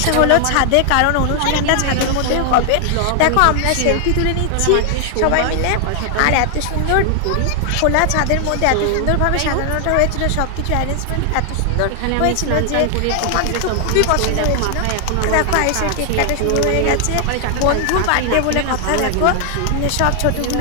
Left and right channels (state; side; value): different; both; correlation 0.00